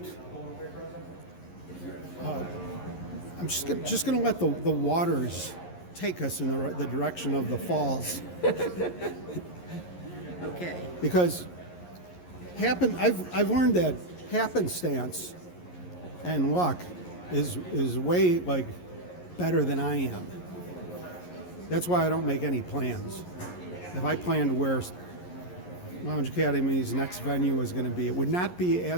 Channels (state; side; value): late; right; 11 ms